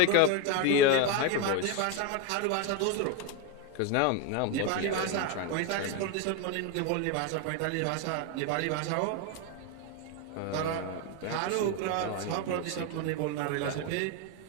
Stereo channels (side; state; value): both; different; correlation 0.02